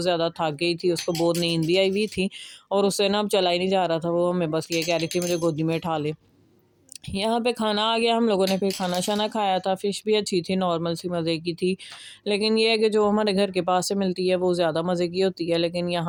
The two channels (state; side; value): identical; both; correlation 1.00